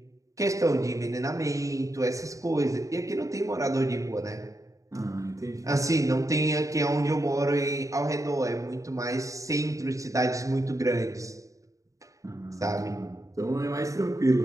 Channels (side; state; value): left; late; 0.16 ms